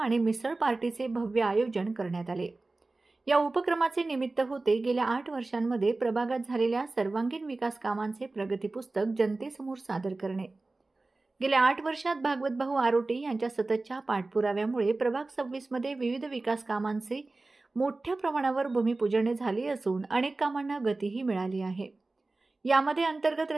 मिसळ पार्टीचे भव्य आयोजन करण्यात आले। या उपक्रमाचे निमित्त होते गेल्या 8 वर्षांमध्ये प्रभागात झालेल्या सर्वांगीण विकास कामांचे प्रगती पुस्तक जनतेसमोर सादर करणे। गेल्या 8 वर्षात भागवतभाऊ आरोटे यांच्या सततच्या पाठपुराव्यामुळे प्रभाग 26 मध्ये विविध विकास कामांचे मोठ्या प्रमाणावर भूमिपूजन झाले असून अनेक कामांना गतीही मिळाली आहे। यामध्ये अंतर्गत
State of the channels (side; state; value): left; quieter; 3.3 dB